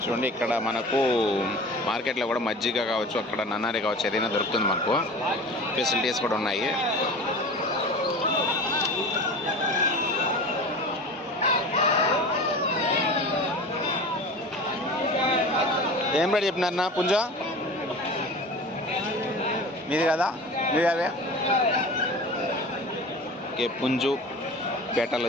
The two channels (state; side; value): normal; both; correlation 0.36